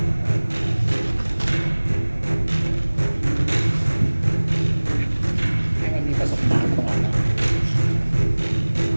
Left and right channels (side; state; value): both; inverted; correlation -1.00